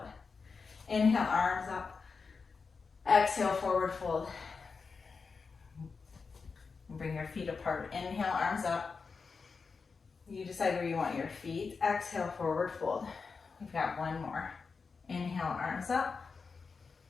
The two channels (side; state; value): right; quieter; 4.9 dB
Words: Inhale, arms up. Exhale, forward fold. Bring your feet apart. Inhale, arms up. You decide where you want your feet. Exhale, forward fold. We've got one more. Inhale, arms up.